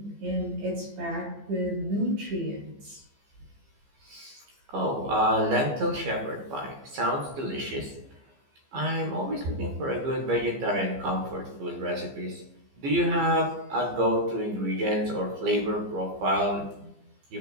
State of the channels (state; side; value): late; left; 15 ms